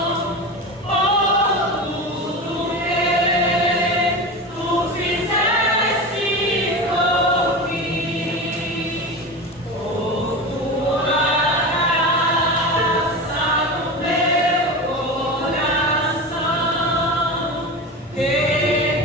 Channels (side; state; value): both; normal; correlation 0.26